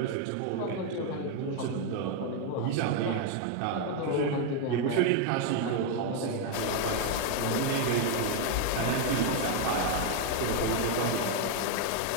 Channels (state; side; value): different; both; correlation 0.01